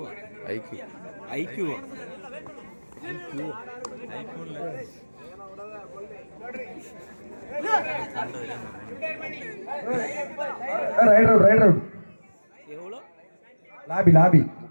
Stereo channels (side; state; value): both; inverted; correlation -1.00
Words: ஐக்யூ ஐக்யூவா? IQOO raid out, raid out. எவ்வளோ? லாபி